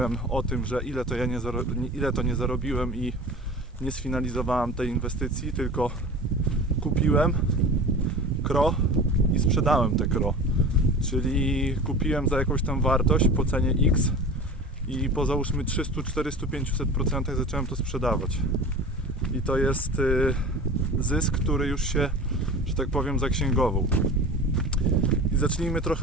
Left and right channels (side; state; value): both; normal; correlation 0.36